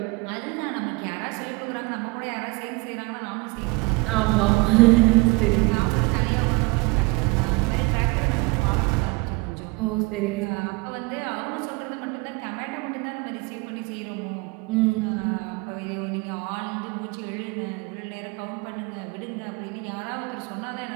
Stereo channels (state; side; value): quieter; left; 26.0 dB